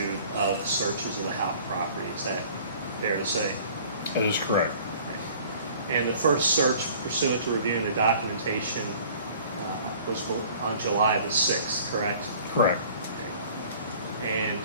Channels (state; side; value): inverted; both; correlation -0.50